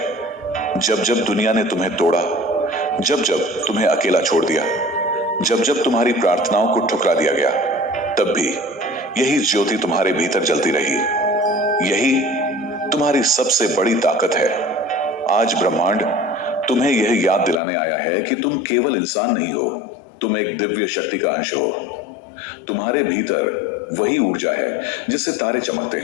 जब जब दुनिया ने तुम्हें तोड़ा, जब जब तुम्हें अकेला छोड़ दिया, जब जब तुम्हारी प्रार्थनाओं को ठुकरा दिया गया, तब भी यही ज्योति तुम्हारे भीतर जलती रही। यही तुम्हारी सबसे बड़ी ताकत है। आज ब्रह्मांड तुम्हें यह याद दिलाने आया है कि तुम केवल इंसान नहीं हो, तुम एक दिव्य शक्ति का अंश हो। तुम्हारे भीतर वही ऊर्जा है जिससे तारे चमकते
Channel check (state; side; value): drops out; right; at 17.6 s